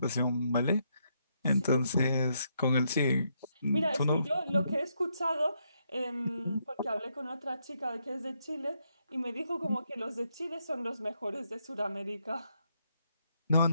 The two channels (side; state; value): both; inverted; correlation -0.77